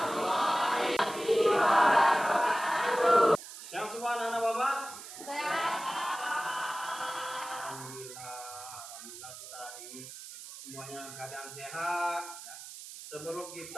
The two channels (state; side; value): noise; right; hiss, 13 dB below the sound